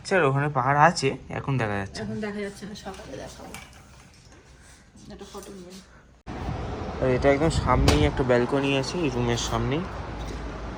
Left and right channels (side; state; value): both; identical; correlation 1.00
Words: আর ওখানে পাহাড় আছে, এখন দেখা যাচ্ছে। এখন দেখা যাচ্ছে না, সকালে দেখাবো। একটা ফটো নিয়ে। আর এটা একদম সামনেই একটা ব্যালকনি আছে, এই রুমের সামনেই।